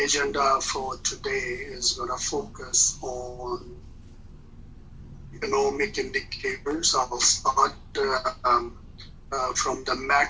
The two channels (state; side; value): identical; both; correlation 1.00